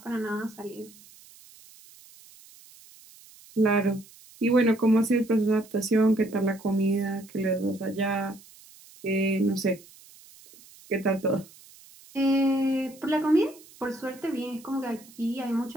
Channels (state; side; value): noise; right; hiss, 23 dB below the sound